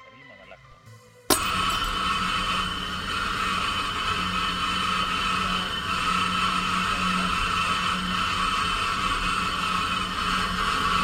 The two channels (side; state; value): both; identical; correlation 1.00